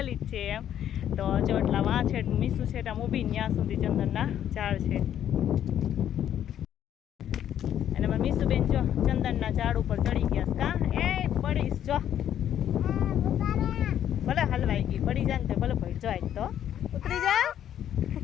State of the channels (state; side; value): quieter; right; 10.4 dB